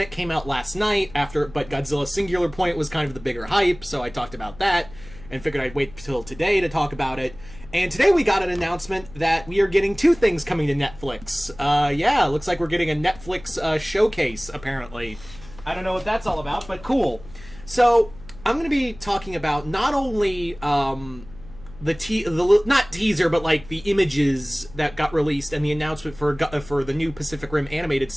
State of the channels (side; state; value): left; noise; hum, 19 dB below the sound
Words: came out last night, but Godzilla Singular Point was kind of the bigger hype, so I talked about that, and figured I'd wait till today to talk about it. And today we got an announcement that we are getting two things coming to Netflix. Yeah, looks like we're getting a Netflix showcase, apparently. I don't know what that's all about, but cool. So, I'm going to be talking about not only not teaser, but like the images that got released and the announcement for the new Pacific Rim animated